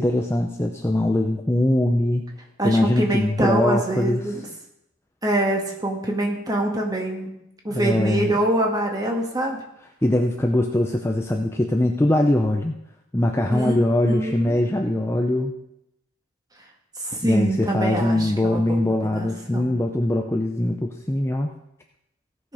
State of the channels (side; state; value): both; normal; correlation 0.81